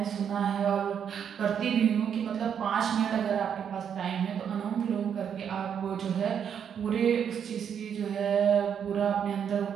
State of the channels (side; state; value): left; quieter; 8.0 dB